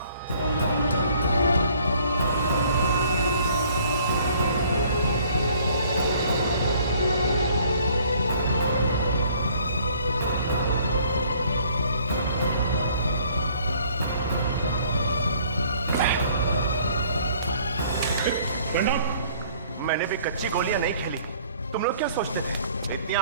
मैंने भी कच्ची गोलियां नहीं खेली। तुम लोग क्या सोचते थे इतनी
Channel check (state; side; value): inverted; both; correlation -0.58